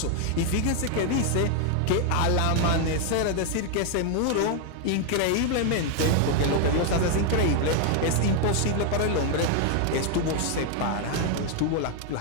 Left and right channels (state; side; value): different; both; correlation 0.01